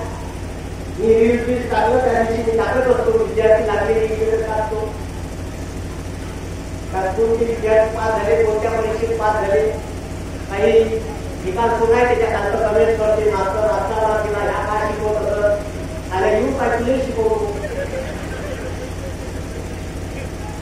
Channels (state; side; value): identical; both; correlation 1.00